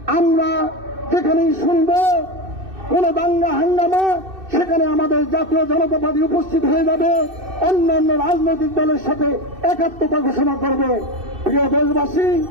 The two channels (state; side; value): late; left; 2.6 ms